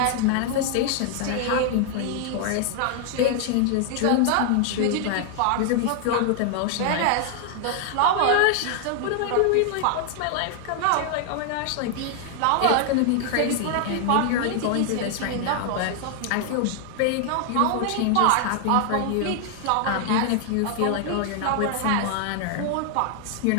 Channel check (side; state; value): both; different; correlation 0.00